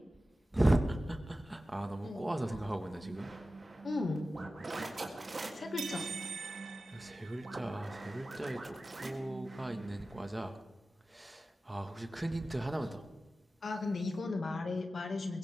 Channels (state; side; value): normal; both; correlation 0.94